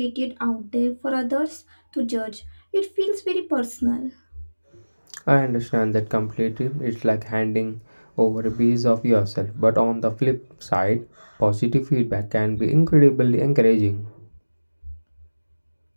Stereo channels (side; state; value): both; inverted; correlation -1.00